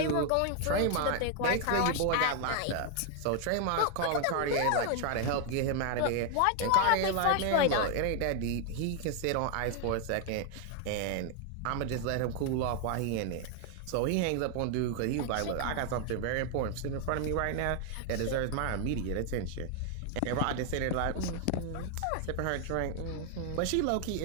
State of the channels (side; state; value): both; different; correlation 0.00